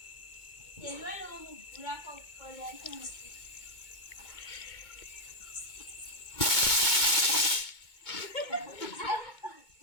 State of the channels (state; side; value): late; right; 2.2 ms